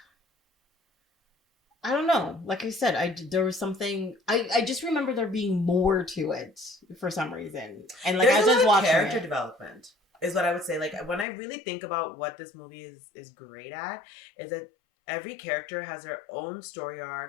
I don't know. Like I said, there was something. I just remember there being more to it for some reason, and like there's as I was watching character development is what I would say. Like when I really think about what this movie is great at, is that every character has their own story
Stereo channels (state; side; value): drops out; right; at 11.2 s